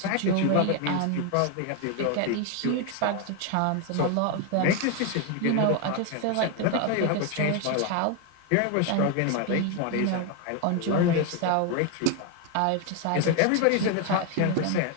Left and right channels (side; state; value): both; different; correlation 0.01